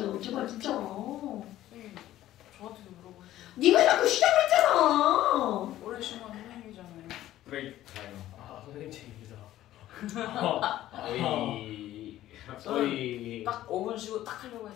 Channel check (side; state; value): right; quieter; 13.8 dB